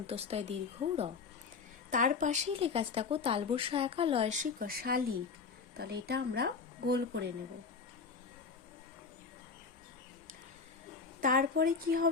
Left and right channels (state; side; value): quieter; right; 5.1 dB